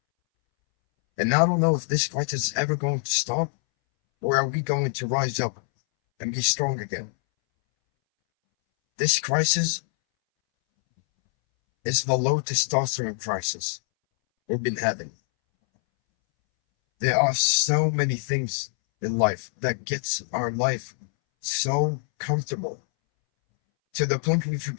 And I don't know if this crisis is ever going to stop, or are we going to rise up and be strong again? This crisis is the low testosterone crisis we've been having. There are so many things in life that gets our life so comfortable to the point we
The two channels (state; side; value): silent; right; 62 dB below the other